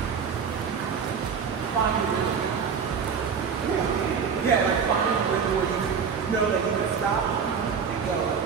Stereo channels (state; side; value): quieter; left; 6.4 dB